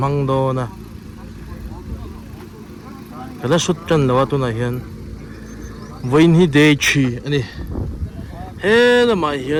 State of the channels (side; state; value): both; identical; correlation 1.00